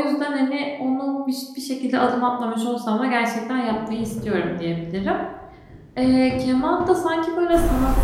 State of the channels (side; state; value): both; identical; correlation 1.00